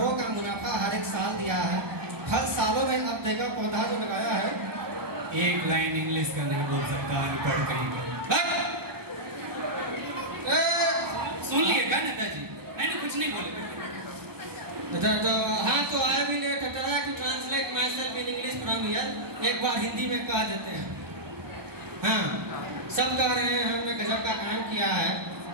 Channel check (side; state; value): left; late; 1.1 ms